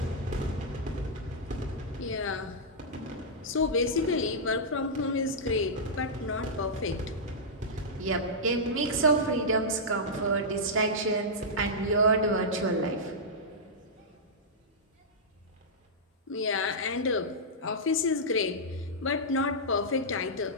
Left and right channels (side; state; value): both; normal; correlation -0.10